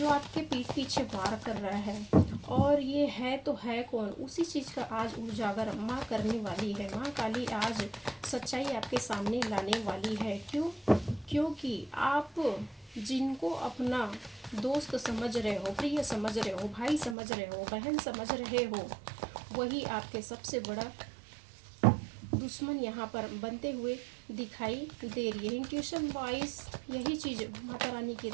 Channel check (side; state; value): left; drops out; at 17.2 s